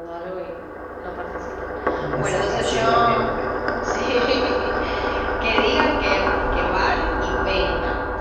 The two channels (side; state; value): both; identical; correlation 1.00